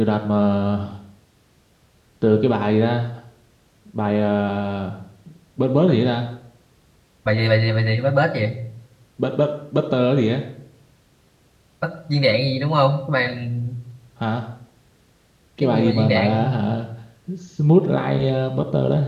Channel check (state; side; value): identical; both; correlation 1.00